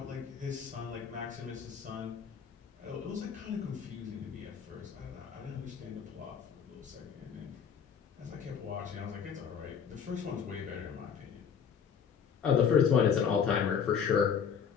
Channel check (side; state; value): right; quieter; 7.2 dB